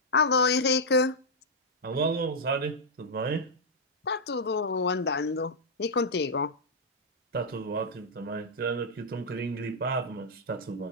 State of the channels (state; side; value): normal; both; correlation -0.07